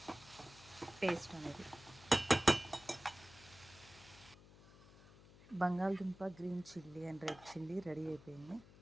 పేస్ట్ అనేది బంగాళదుంప, green chilli and red chilli ready అయిపోయింది.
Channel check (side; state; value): left; noise; hum, 21 dB below the sound